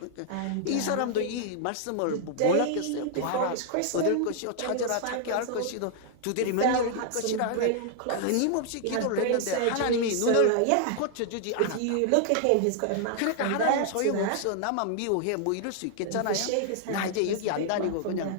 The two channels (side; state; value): both; different; correlation -0.01